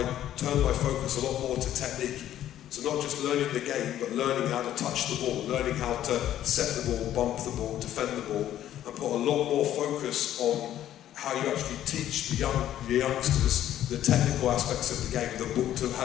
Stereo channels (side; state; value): right; quieter; 11.9 dB